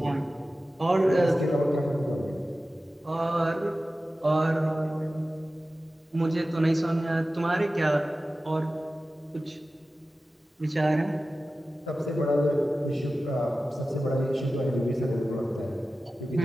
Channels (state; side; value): normal; both; correlation 0.95